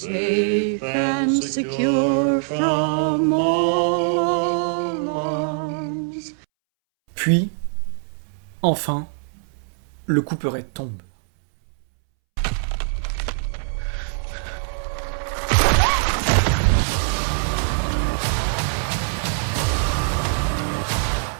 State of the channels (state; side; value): silent; left; 64 dB below the other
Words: and secure from all alarms. Puis, enfin, le couperet tombe.